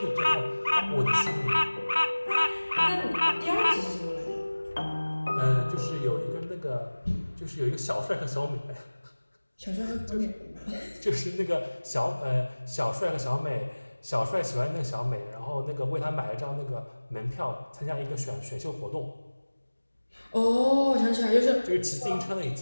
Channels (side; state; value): both; inverted; correlation -1.00